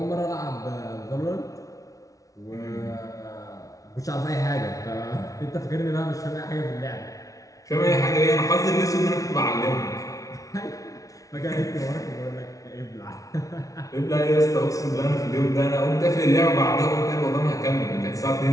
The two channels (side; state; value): right; late; 0.17 ms